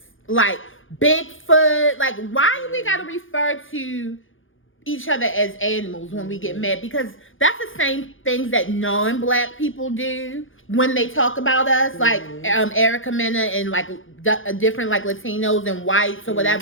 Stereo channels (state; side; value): late; right; 0.58 ms